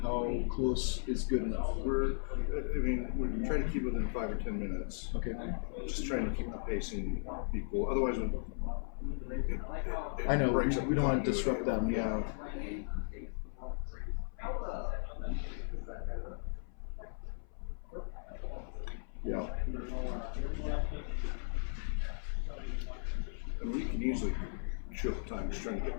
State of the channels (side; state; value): right; silent; 53 dB below the other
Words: close is good enough? We're trying to keep within 5 or 10 minutes. Okay. Just trying to keep the pacing equal. Otherwise, it I know breaks up we don't want to disrupt them. Yeah. Yeah. And we can easily show time just trying to